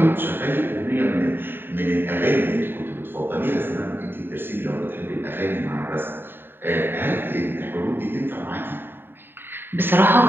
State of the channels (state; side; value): late; left; 0.099 ms